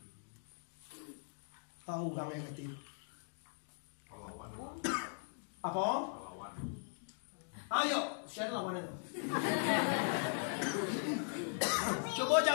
Tahu gang yang kecil. Apa? Ayo, share lawan itu. Coba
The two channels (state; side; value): silent; right; digital silence